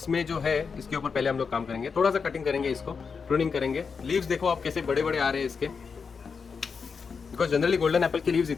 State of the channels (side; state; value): right; quieter; 5.5 dB